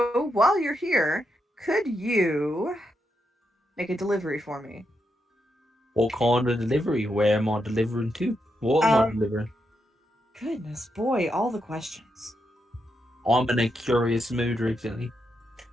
while you're here, could you make a delivery for me? What kind of delivery? Where am I delivering to? What am I delivering? Goodness, boy, all the questions. I'm in a curious mood recently.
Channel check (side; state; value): both; normal; correlation 0.83